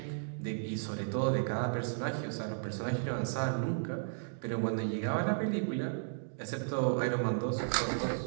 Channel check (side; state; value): left; silent; digital silence